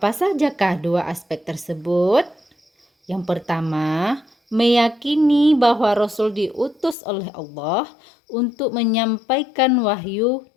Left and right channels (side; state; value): right; drops out; at 7.0 s